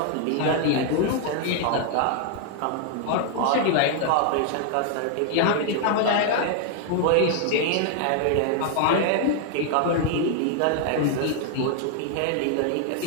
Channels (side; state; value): both; different; correlation 0.00